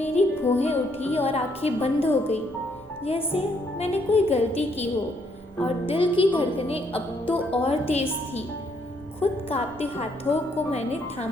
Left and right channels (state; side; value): normal; both; correlation 0.71